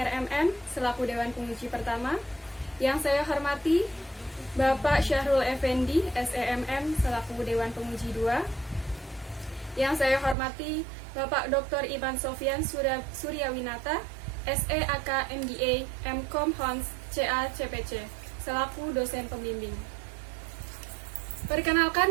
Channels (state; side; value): drops out; left; at 10.4 s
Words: selaku Dewan Penguji pertama. Yang saya hormati Bapak Syahrul Effendi SEMM selaku Dewan Penguji 2. Yang saya hormati Bapak Dr. Iman Sofyan Suryawinata SEAK MBA MCom Hons CA CPC selaku dosen pembimbing.